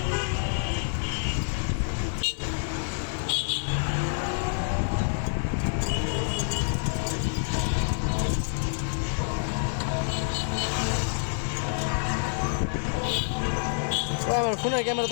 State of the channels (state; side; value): silent; right; 60 dB below the other